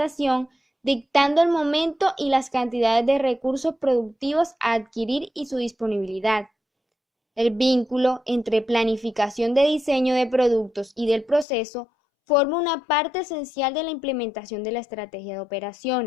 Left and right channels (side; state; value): right; drops out; at 11.5 s